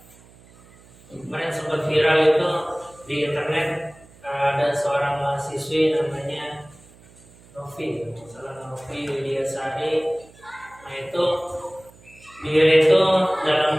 Kemarin sempat viral itu di internet, ada seorang mahasiswi namanya Novi, salah Novi Widiasari. Nah itu dia itu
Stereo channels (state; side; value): noise; right; hum, 25 dB below the sound